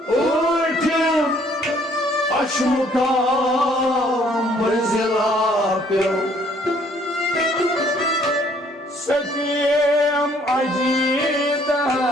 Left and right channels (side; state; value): both; normal; correlation 0.62